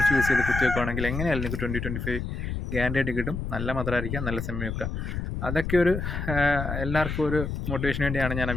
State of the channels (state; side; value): noise; left; rumble, 4 dB below the sound